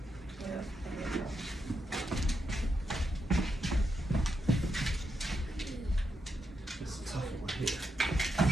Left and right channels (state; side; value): normal; both; correlation 0.84